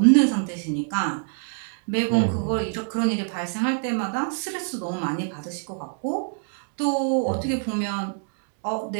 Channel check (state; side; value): silent; left; 60 dB below the other